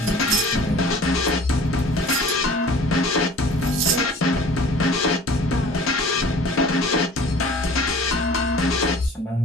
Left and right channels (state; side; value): normal; both; correlation 0.46